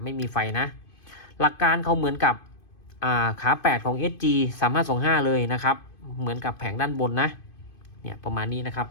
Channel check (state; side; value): late; right; 2.5 ms